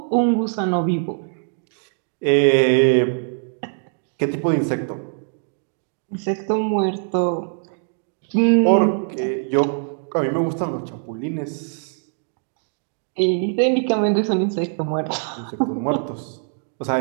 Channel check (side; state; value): left; silent; 61 dB below the other